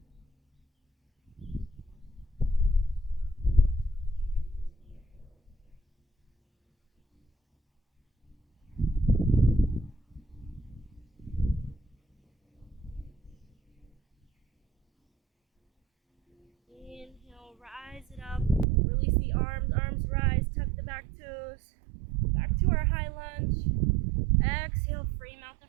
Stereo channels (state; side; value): drops out; left; at 18.7 s